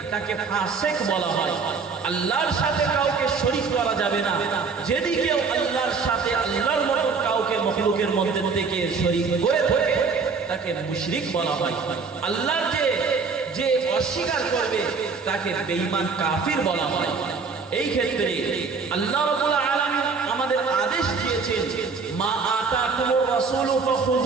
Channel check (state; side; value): quieter; left; 4.9 dB